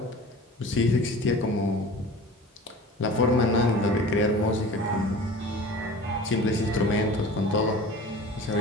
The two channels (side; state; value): both; normal; correlation 0.40